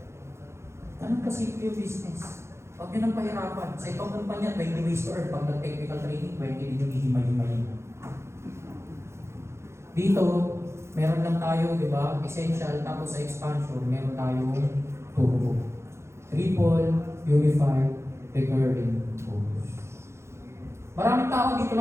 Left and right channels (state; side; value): late; left; 0.13 ms